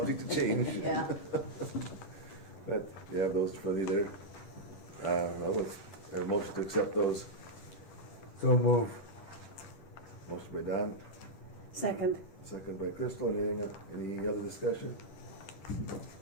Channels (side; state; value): right; late; 10 ms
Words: to change. Yeah. But you have those for you there. Well, let's have a motion to accept those. So move. Motion by Don, Second. second by Crystal. Any other discussion?